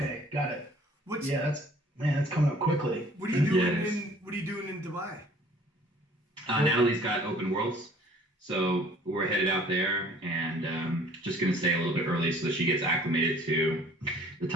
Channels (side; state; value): both; normal; correlation 0.54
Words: got it. That's coming up quickly. What are you doing What are you doing in Dubai? Natalie's got Open Worlds, so we're headed out there and just gonna stay a little bit early so that she gets acclimated to the